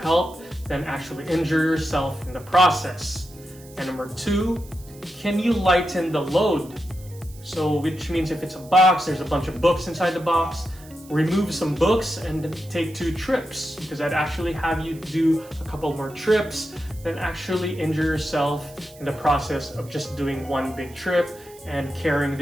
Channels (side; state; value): right; noise; hiss, 22 dB below the sound